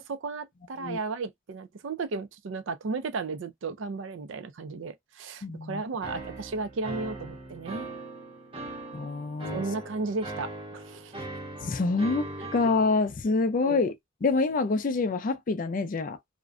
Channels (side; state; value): both; normal; correlation 0.17